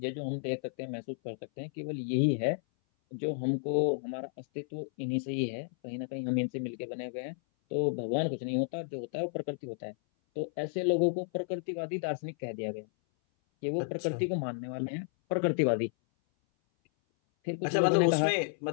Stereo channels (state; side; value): silent; right; 56 dB below the other